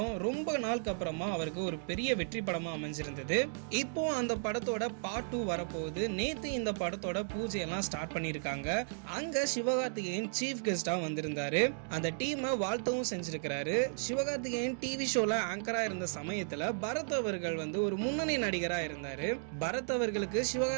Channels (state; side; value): silent; left; digital silence